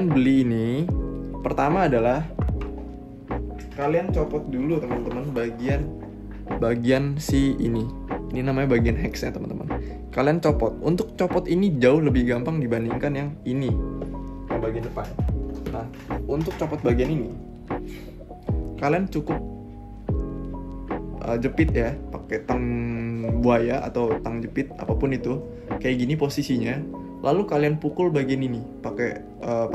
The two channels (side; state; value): both; identical; correlation 1.00